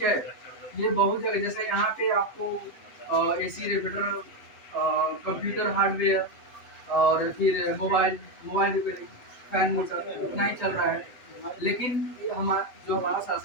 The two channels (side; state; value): right; late; 7.1 ms